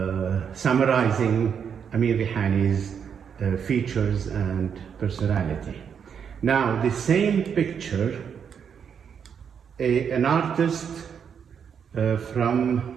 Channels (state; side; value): quieter; left; 7.4 dB